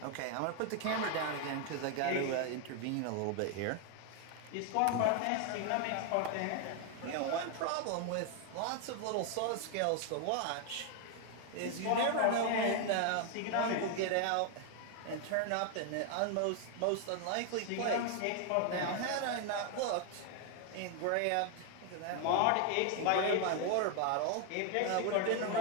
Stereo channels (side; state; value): both; different; correlation 0.01